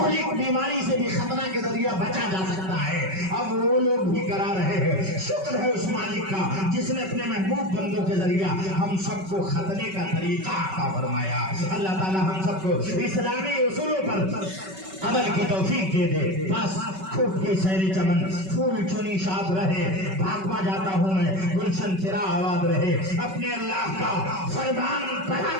بیماری سے بھی ختنہ کے ذریعہ بچا جا سکتا ہے۔ اب وہ لوگ بھی کرا رہے ہیں۔ شکر ہے اس مالک کا جس نے اپنے محبوب بندوں کے ذریعہ ہم سب کو ختنے کا طریقہ عطا فرمایا۔ اللہ تعالی ہم سب کو اسلامی اصولوں پر عمل کی توفیق دے دے۔ بس خوب کے سیر چمن پھول چنی شاد رہے، بھاگوا جاتا ہوں میں گلشن تیرا آباد رہے۔ اپنے اللہ کا فرمان پڑھا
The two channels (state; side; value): late; left; 5.3 ms